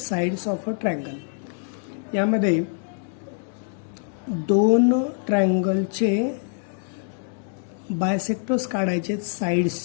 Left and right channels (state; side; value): silent; right; digital silence